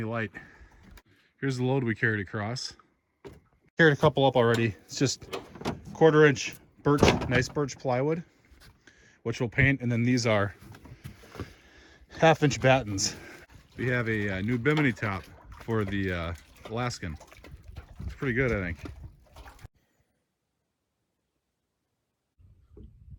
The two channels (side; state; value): both; identical; correlation 1.00